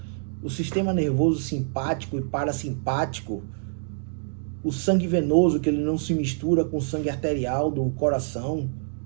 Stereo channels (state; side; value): silent; left; digital silence